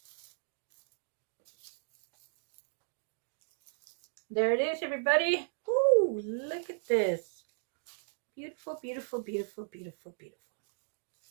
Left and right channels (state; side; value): silent; left; digital silence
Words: There it is, everybody. Ooh, look at this. Beautiful, beautiful, beautiful, beautiful, beautiful.